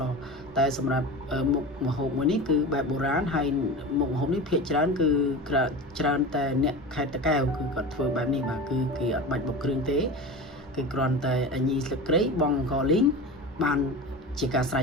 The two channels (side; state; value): both; normal; correlation 0.29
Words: តែសម្រាប់មុខម្ហូបមួយនេះគឺបែបបុរាណហើយមុខម្ហូបនេះភាគច្រើនគឺច្រើនតែអ្នកខេត្តតាកែវគឺគាត់ធ្វើបែបនេះបាទគឺគេអត់បាច់បុកគ្រឿងទេគឺគ្រាន់តែញីស្លឹកគ្រៃបង់អង្ករលីងបានជាការស្រេច